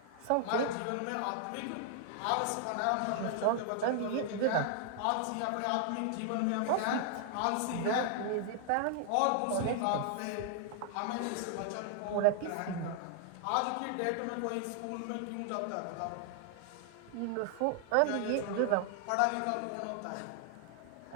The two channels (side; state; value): both; different; correlation 0.00